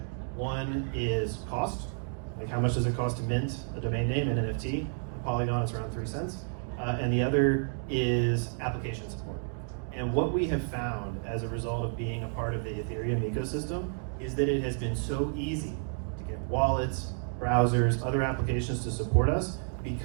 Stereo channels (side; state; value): left; silent; 56 dB below the other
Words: One is cost, like how much does it cost to mint a domain name and NFT? On Polygon, it's around 3 cents. And the other is application support. And what we have found as a result of being a part of the Ethereum ecosystem is that it has been so easy to get wallets, browsers, other applications to support us